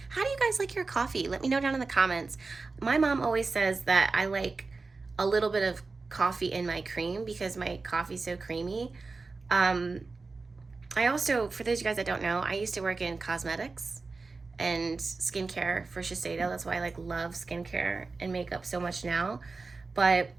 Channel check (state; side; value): quieter; left; 4.0 dB